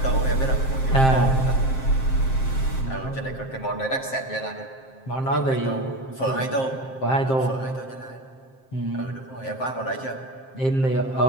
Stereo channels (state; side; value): late; right; 7.6 ms